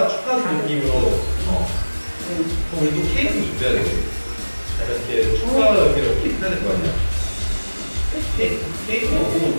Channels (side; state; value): both; inverted; correlation -1.00